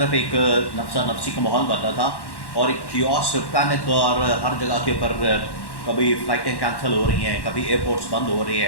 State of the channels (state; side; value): late; right; 1.1 ms